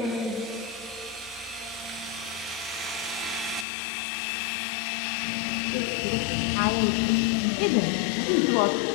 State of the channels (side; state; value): right; drops out; at 3.7 s